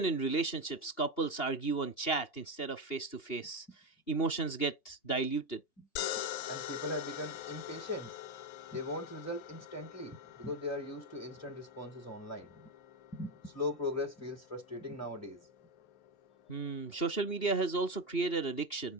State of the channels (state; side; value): late; right; 2.8 ms